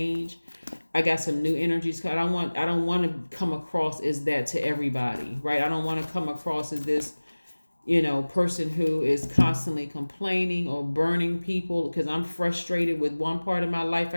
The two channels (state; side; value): inverted; both; correlation -1.00